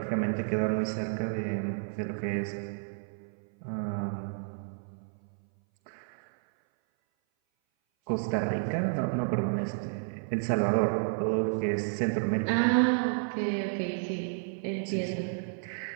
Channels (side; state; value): left; silent; 57 dB below the other